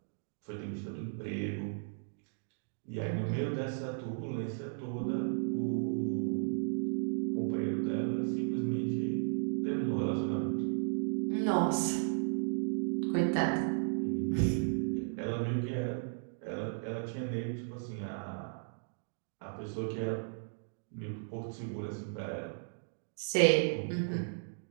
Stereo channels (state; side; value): silent; left; digital silence